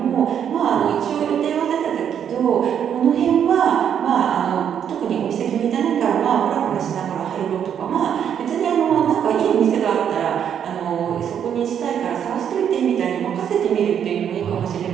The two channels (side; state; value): left; quieter; 8.7 dB